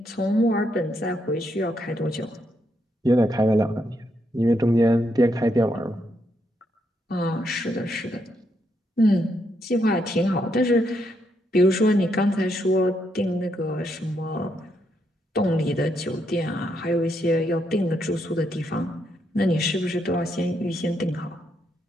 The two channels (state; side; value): normal; both; correlation 0.78